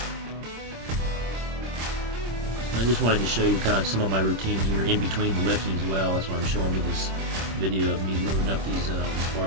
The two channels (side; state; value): left; late; 26 ms